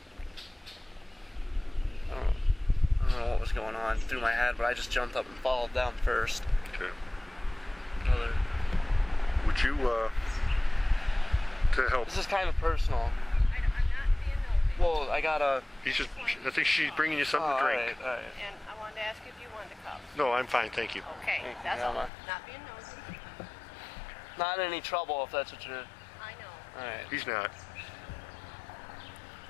I don't know what was going on through my head, but I just jumped up and followed them first. Okay. Would you, to help? This is kind of personal. I'm not being nosy. Well, I got a... I think she's bringing you something to drink. All right. And I wanted to ask if you wanted a cup. No, I'm fine, thank you. Okay, Thank you, that's all. Mama. Not being nosy. Not in any trouble if that's what you're... I know. All right. He's not.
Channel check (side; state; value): right; drops out; at 22.1 s